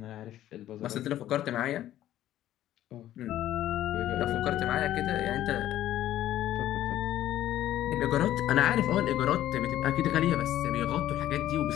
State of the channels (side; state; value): right; quieter; 12.9 dB